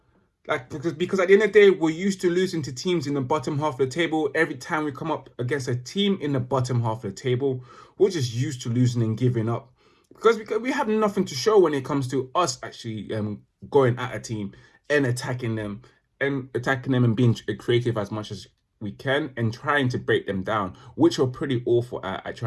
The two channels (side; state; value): both; identical; correlation 1.00